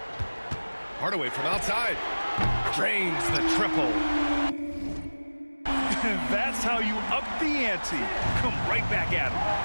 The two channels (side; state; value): both; inverted; correlation -1.00